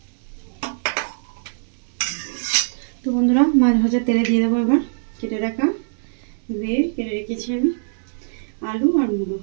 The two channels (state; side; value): silent; left; digital silence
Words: তো বন্ধুরা, মাছ ভাজা তেলে দিয়ে দেবো এবার কেটে রাখা কেটে রেখেছি আমি আলু আর মূলো।